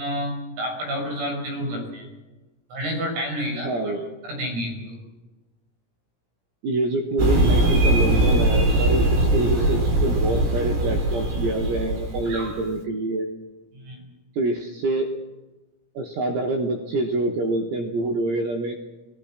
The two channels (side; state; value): left; late; 17 ms